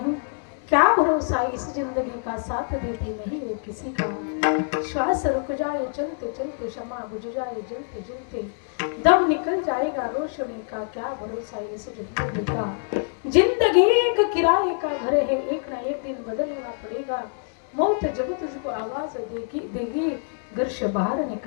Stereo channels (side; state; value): right; silent; 62 dB below the other